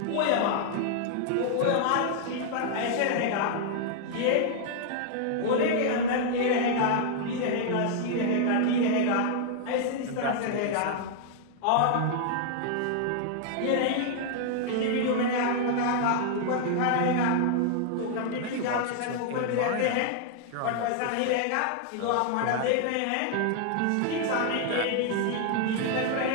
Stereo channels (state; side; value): different; both; correlation -0.01